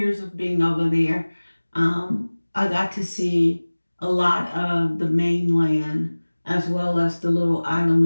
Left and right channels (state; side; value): inverted; both; correlation -1.00